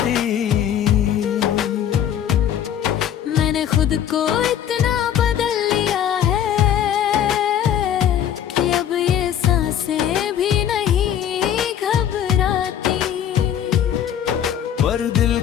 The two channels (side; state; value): right; quieter; 9.8 dB